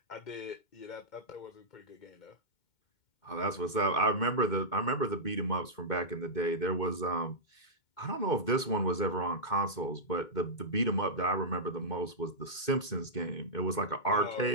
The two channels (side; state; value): right; late; 2.2 ms